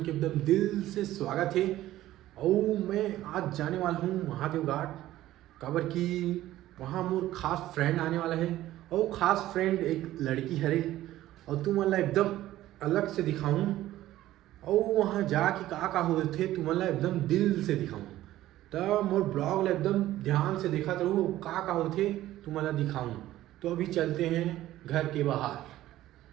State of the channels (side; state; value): left; quieter; 14.6 dB